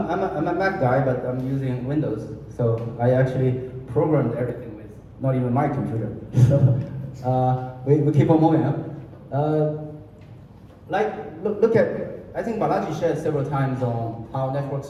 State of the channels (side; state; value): both; identical; correlation 1.00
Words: a Mac guy, but I'm using Windows, so I actually programmed everything with not even my computer. So, we keep on moving, huh? Look at, I think Balaji shared several times on how network